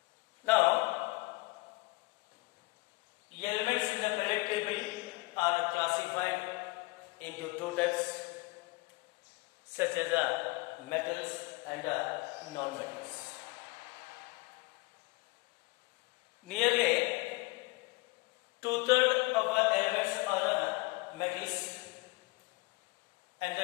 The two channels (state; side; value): quieter; right; 24.6 dB